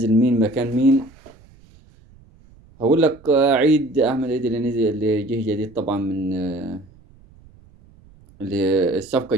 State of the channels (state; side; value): noise; right; rumble, 26 dB below the sound